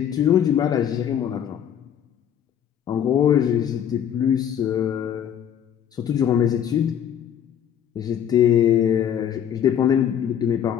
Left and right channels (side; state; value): right; quieter; 9.4 dB